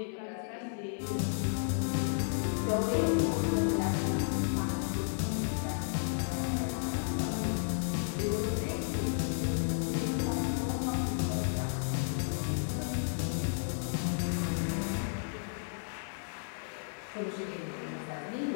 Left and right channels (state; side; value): silent; right; digital silence